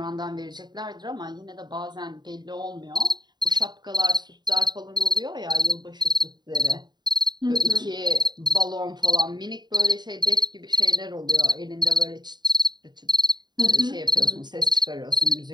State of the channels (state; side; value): late; left; 0.21 ms